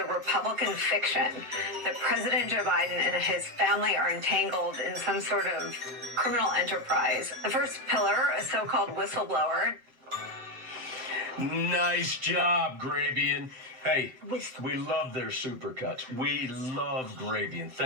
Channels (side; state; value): left; late; 7.7 ms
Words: Republican fiction that President Joe Biden and his family are entangled in some sort of criminal enterprise. The first pillar, a so-called whistleblower. Nice job, Grabian. Hey, we love their supercuts. We love Grabian.